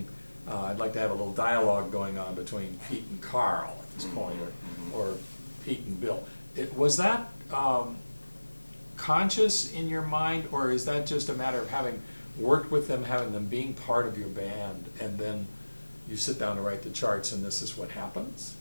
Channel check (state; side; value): inverted; both; correlation -1.00